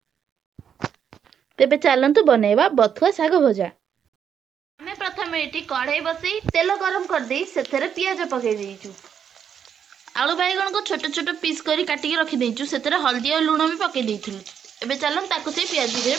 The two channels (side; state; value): left; quieter; 8.1 dB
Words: तेबे चलतु बनैबा बथुआ साग भजा। आमे प्रथम एठी कढ़ाई बसई तेल गरम कर देई सेथरे पियाज पके देइचु। आलू बैगण को छोट छोट पीस करी काटिकी रखी देइचु। सेथरे हल्दी और लूण भी पके देइथिलु। एबे चलन ताकु से पियाज भितरे